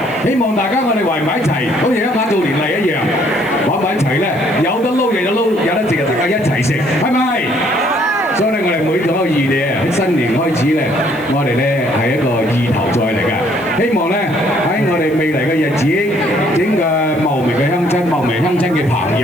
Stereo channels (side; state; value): left; noise; hiss, 26 dB below the sound